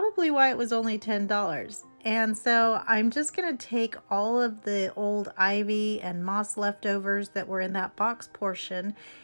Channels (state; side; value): inverted; both; correlation -1.00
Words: why it was only $10. And so I'm just going to take all of the old ivy and moss leftovers that were in that box portion,